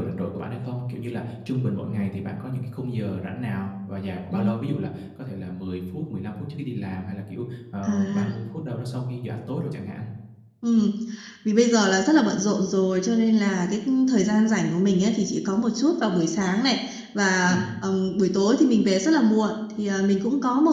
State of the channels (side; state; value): both; identical; correlation 1.00